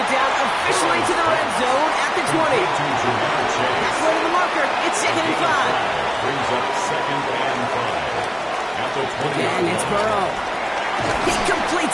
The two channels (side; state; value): both; identical; correlation 1.00